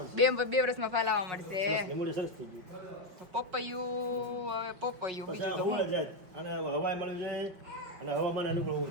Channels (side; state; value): left; late; 5.5 ms